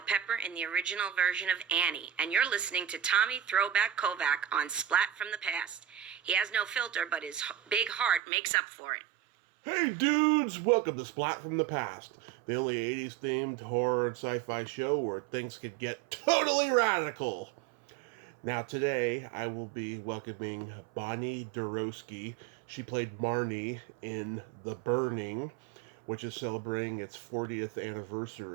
Pepper in the original version of Annie, and you're listening to Tommy Throwback Kovac on Splat from the Past. He has no filter, but his big heart makes up for it. Hey dudes, welcome to Splat from the Past, the only 80s themed horror and sci-fi show where things could get totally radical. Now today I will be welcoming Bonnie Deroski. She played Marnie in The Burning, which is celebrating its 40th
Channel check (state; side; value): drops out; left; at 8.2 s